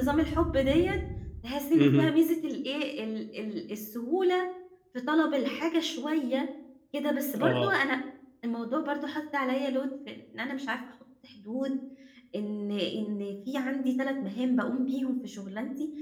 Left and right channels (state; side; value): identical; both; correlation 1.00